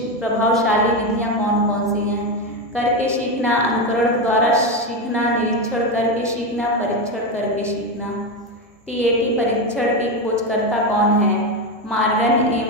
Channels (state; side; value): normal; both; correlation 0.13